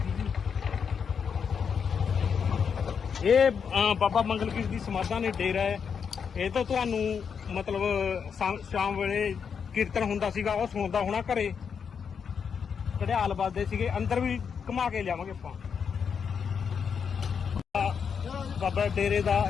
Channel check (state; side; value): quieter; right; 6.7 dB